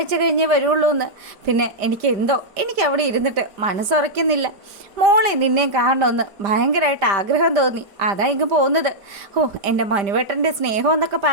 കഴിഞ്ഞേ വരുള്ളൂ എന്ന്. പിന്നെ എനിക്ക് അവിടെ ഇരുന്നിട്ട് മനസ്സുറയ്ക്കുന്നില്ല. മോളെ നിന്നെയും കാണണമെന്ന് ഭയങ്കരമായിട്ട് ആഗ്രഹം തോന്നി. അതാ ഇങ്ങ് പോകുന്നത്. എൻ്റെ മനുവേട്ടൻ്റെ സ്നേഹം എന്നൊക്കെ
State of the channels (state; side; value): late; left; 5.0 ms